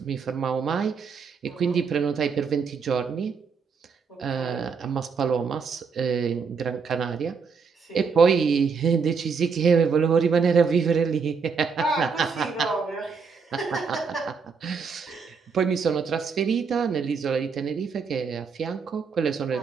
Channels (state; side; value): quieter; left; 5.6 dB